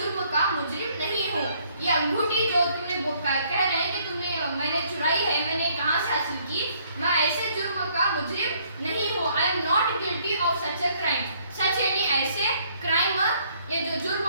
का मुजरिम नहीं हूँ। ये अंगूठी जो तुमने कह रहे हैं कि मैंने चुराई है, मैंने कहाँ से हासिल की, मैं ऐसे जुर्म का मुजरिम नहीं हूँ। I am not guilty of such a crime, such यानी ऐसे, क्राइम ये जो जुर्म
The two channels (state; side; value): inverted; both; correlation -0.65